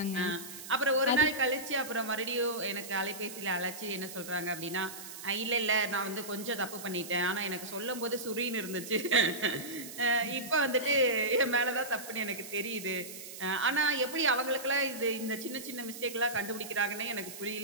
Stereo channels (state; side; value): noise; right; hiss, 12 dB below the sound